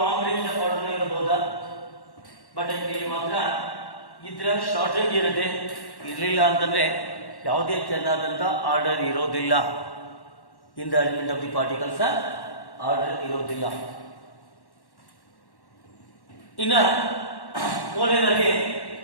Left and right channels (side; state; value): right; late; 1.1 ms